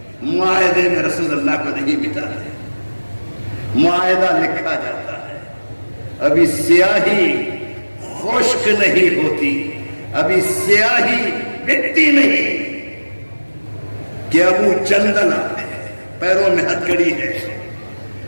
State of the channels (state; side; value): inverted; both; correlation -1.00